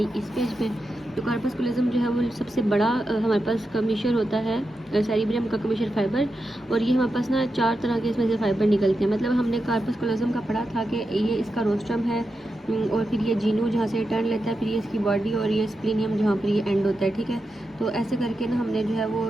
इस पेज पे। तो कार्पस्कुलज्म जो है वो सबसे बड़ा हमारे पास कमीशन होता है सेरिब्रम का कमीशन फाइबर, और ये हमारे पास ना 4 तरह के इसमें से फाइबर निकलते हैं। मतलब हमने कार्पस्कुलज्म का पढ़ा था कि ये इसका रोस्ट्रम है, और फिर ये जीनू जहाँ से टर्न लेता है, फिर ये इसकी बॉडी, और ये स्प्लीनियम जहाँ पर ये एंड होता है, ठीक है। तो ऐसे करके ना हमने जो है वो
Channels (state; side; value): normal; both; correlation 0.88